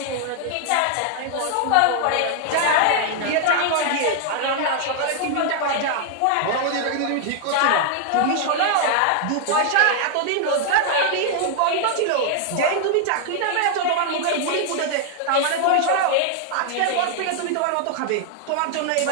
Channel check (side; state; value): both; different; correlation 0.00